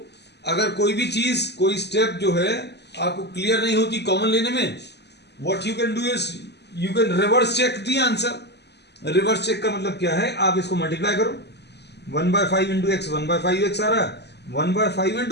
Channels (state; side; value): late; right; 0.49 ms